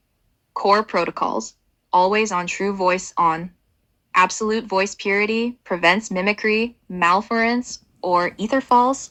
Core protocols. Always on true voice on. Absolute voice purity prevents mimicry, malference, or ether falls,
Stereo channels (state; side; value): identical; both; correlation 1.00